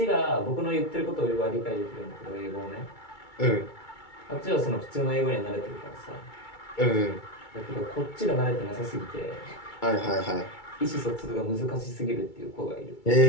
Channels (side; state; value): right; late; 2.3 ms